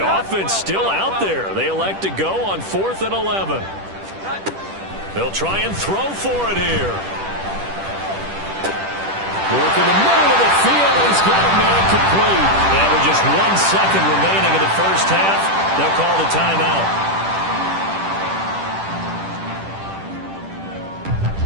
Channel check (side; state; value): left; late; 10 ms